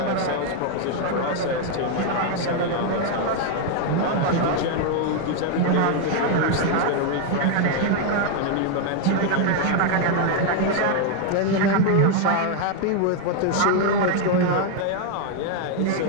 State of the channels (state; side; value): different; both; correlation 0.01